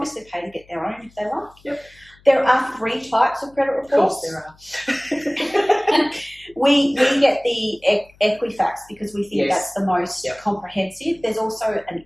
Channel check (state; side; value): noise; left; hum, 29 dB below the sound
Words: pay to get their own if they like. There are 3 types of credit reports. Of course there are. We get the Equifax because we think that's the most comprehensive. There's also an